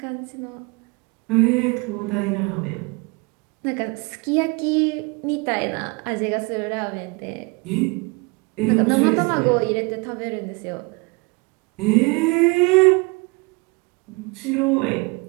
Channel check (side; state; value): left; quieter; 28.7 dB